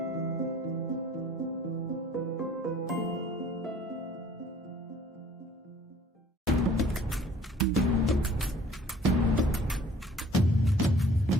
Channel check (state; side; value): normal; both; correlation 0.54